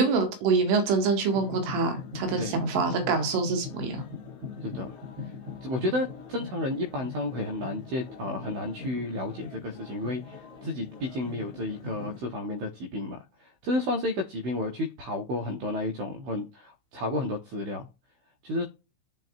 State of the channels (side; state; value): left; late; 16 ms